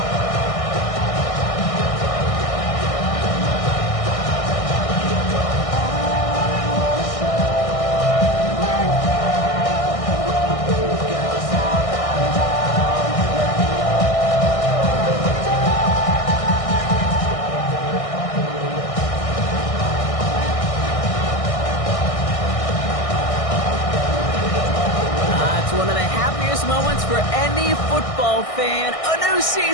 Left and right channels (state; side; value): late; right; 1.6 ms